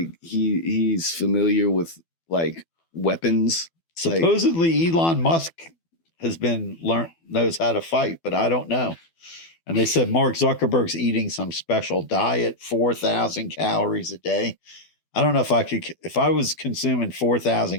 he's familiar with like weapons. Supposedly Elon Musk has knows how to fight, but I don't know. And they said Mark Zuckerberg's eating some special diet, 4,000 calories a day. I don't know if I was consuming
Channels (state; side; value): late; right; 12 ms